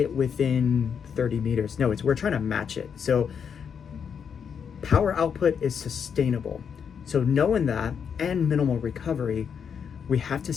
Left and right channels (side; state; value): right; quieter; 7.1 dB